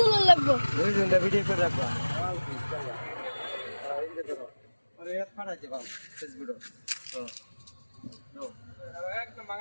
লাগবো ভিডিও করে রাখবা আরে এত ফাটাইছে বাবা ফেসবুক তো একদম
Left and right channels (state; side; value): inverted; both; correlation -1.00